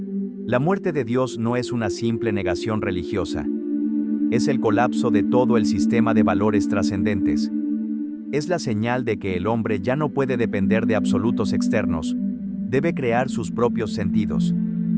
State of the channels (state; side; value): identical; both; correlation 1.00